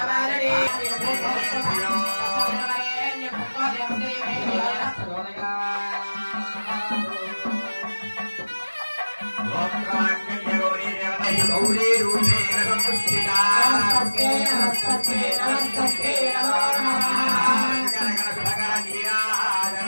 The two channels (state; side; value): inverted; both; correlation -1.00